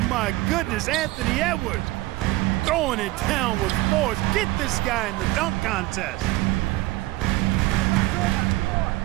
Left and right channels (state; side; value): quieter; left; 19.2 dB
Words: my goodness, Anthony Edwards. Throwing it down with force. Get this guy in the dunk contest.